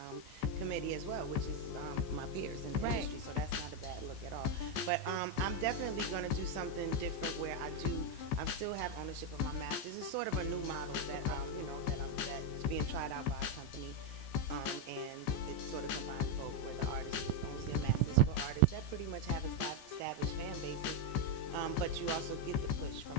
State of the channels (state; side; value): late; right; 14 ms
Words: committee as well, which is my peers in the industry, so that's not a bad look at all. But I'm definitely going to do something different where I still have ownership of my masters. It's sort of a new model that that is being tried out by a company, and it sort of combines both, where the artist owns their masters for artists that pretty much have established fan bases, but you also get the push from